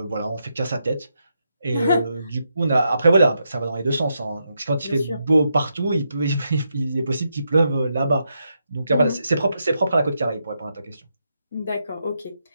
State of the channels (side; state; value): both; inverted; correlation -0.82